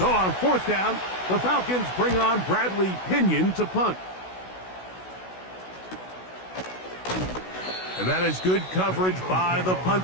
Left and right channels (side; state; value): right; late; 16 ms